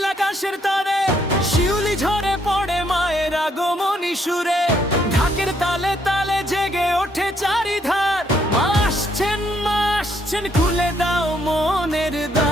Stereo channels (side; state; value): both; normal; correlation 0.71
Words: আকাশের তারে, শিউলি ঝরে পড়ে মায়ের আগমনী সুরে। ঢাকের তালে তালে জেগে ওঠে চারিধার, মা আসছেন খুলে দাও মনের